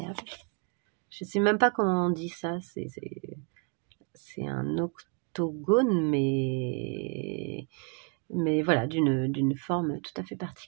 Je ne sais même pas comment on dit ça, c'est un octogone mais voilà, d'une forme tout à fait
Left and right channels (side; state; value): left; quieter; 34.6 dB